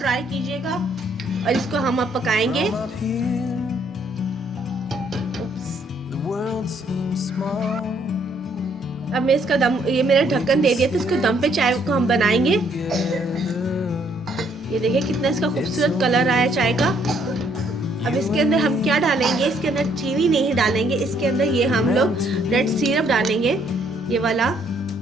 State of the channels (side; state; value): both; normal; correlation 0.68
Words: कीजिएगा। और इसको हम अब पकाएंगे। अब मैं इसका दम, ये मेरा ढक्कन दे दिया था, इसको दम पे चाय को हम बनाएंगे। ये देखिए कितना इसका खूबसूरत कलर आया चाय का। अब इसके अंदर हम क्या डालेंगे, इसके अंदर चीनी नहीं डालेंगे, इसके अंदर ये हम लोग रेड सिरप डालेंगे, ये वाला,